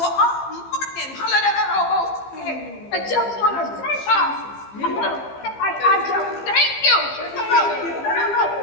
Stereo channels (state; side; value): late; right; 15 ms